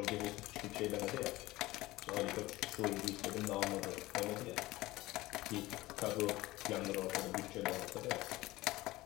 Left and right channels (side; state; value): right; quieter; 18.6 dB